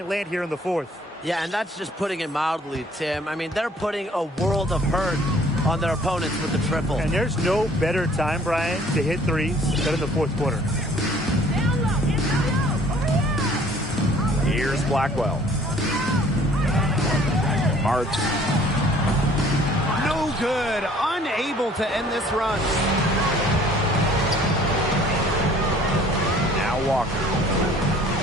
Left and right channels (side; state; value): both; normal; correlation 0.55